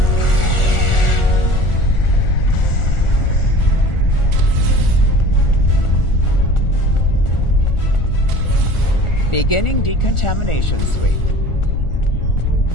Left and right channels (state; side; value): late; right; 1.4 ms